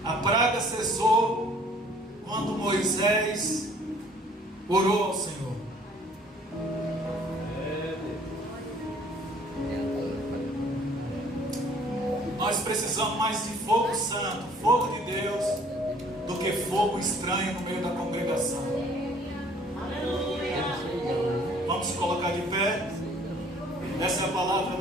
A praga cessou quando Moisés orou ao Senhor. Nós precisamos mais de fogo santo, fogo de Deus, do que fogo estranho no meio da congregação. Vamos se colocar de pé. Essa é a palavra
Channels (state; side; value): normal; both; correlation 0.57